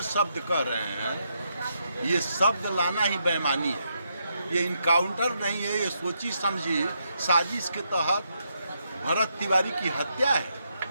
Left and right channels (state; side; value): inverted; both; correlation -0.79